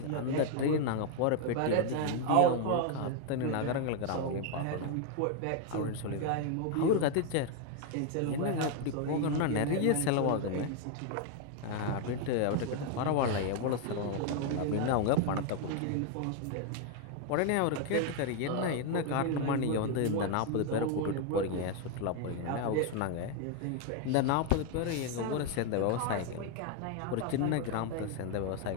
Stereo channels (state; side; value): different; both; correlation 0.01